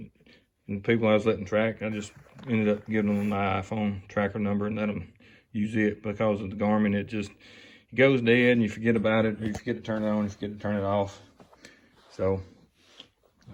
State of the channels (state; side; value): identical; both; correlation 1.00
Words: And the people I was letting track, I just ended up giving them my iPhone tracker number and let them use it. Because of the Garmin, it goes dead and you forget about it, or you forget to turn it on, you forget to turn it off. So